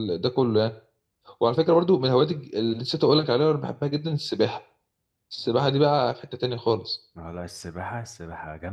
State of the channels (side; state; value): both; identical; correlation 1.00